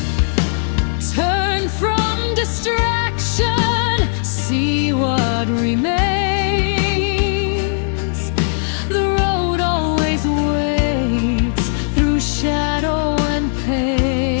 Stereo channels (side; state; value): right; silent; digital silence